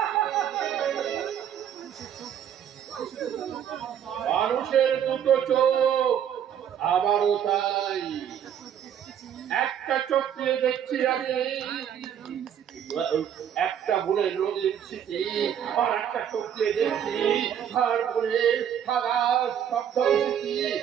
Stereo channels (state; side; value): quieter; left; 9.2 dB